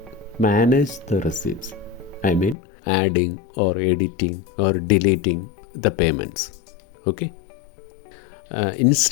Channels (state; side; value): drops out; right; at 2.6 s